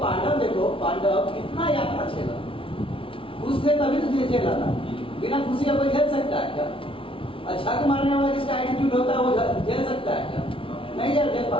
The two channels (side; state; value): right; late; 0.26 ms